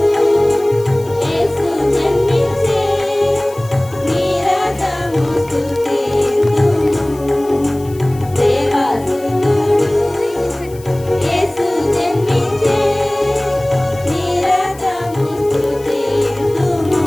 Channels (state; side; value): noise; left; hiss, 22 dB below the sound